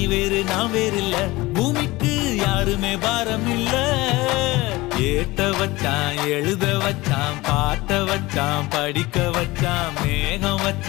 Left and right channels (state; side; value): quieter; right; 20.6 dB